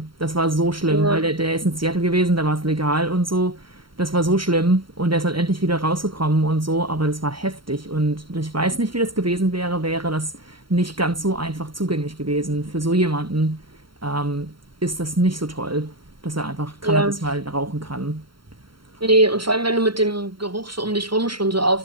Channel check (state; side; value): late; left; 0.73 ms